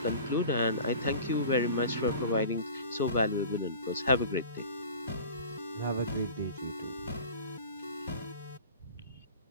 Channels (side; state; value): both; inverted; correlation -0.40